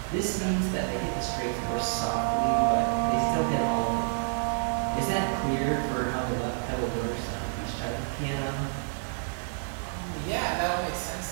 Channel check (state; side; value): silent; left; digital silence